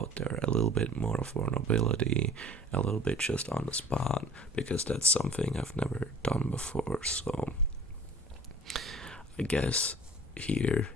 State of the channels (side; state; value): both; normal; correlation 0.47